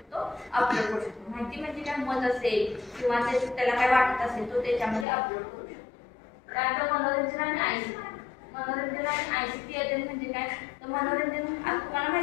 अपलोड करू शकतो. माहिती म्हणजे काय? मत असेल किंवा त्याला काय वाटत असेल तो त्याच्यामध्ये अपलोड करू शकतो. त्यानंतर मनोरंजन आणि ICT अध्ययन म्हणजे काय? तर मनोरंजन आज तुम्हाला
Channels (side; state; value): right; drops out; at 5.1 s